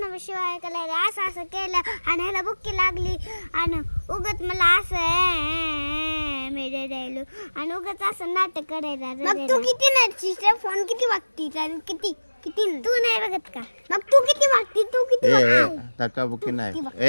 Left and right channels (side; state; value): both; inverted; correlation -1.00